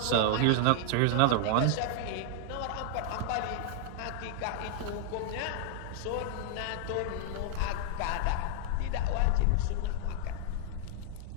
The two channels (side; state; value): both; different; correlation -0.01